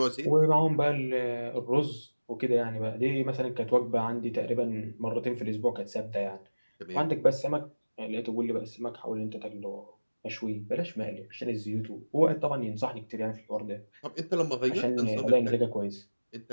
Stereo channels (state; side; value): inverted; both; correlation -1.00